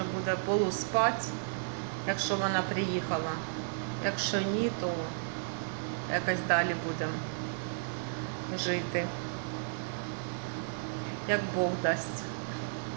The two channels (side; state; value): left; silent; 56 dB below the other